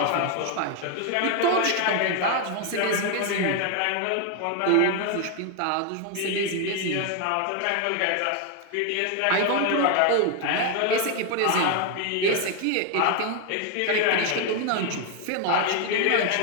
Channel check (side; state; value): both; different; correlation 0.01